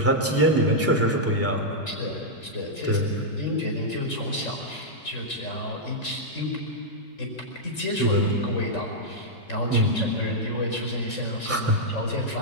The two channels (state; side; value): normal; both; correlation -0.06